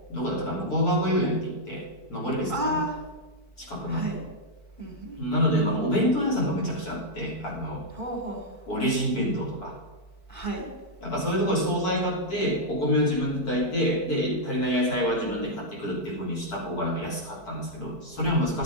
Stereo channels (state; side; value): late; right; 4.6 ms